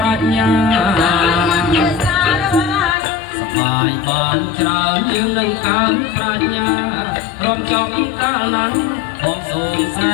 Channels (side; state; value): right; drops out; at 3.0 s